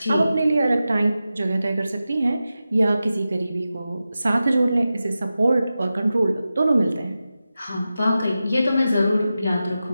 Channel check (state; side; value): inverted; both; correlation -0.93